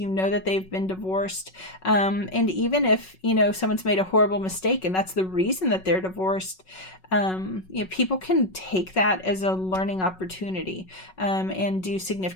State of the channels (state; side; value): late; right; 5.4 ms